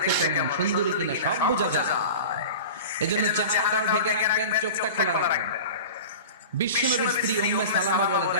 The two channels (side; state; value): both; inverted; correlation -0.34